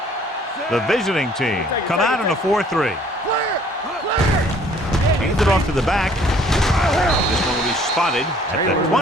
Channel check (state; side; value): normal; both; correlation 0.58